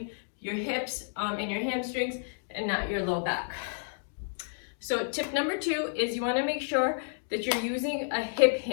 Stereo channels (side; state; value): right; silent; digital silence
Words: your hips and your hamstrings and not your low back. So tip number 2 is you want to make sure that you're using a hip